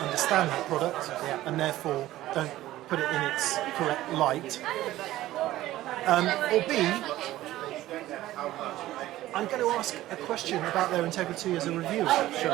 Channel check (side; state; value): left; quieter; 15.3 dB